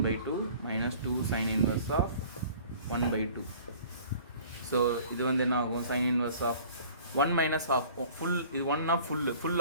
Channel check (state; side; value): inverted; both; correlation -0.49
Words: -2 sine inverse of 1/2. ஸோ இது வந்து என்ன ஆகும், sine inverse of 1 minus of full, இது 1னா ஃபுல்